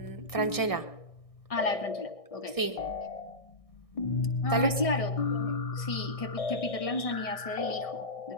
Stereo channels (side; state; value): right; late; 1.6 ms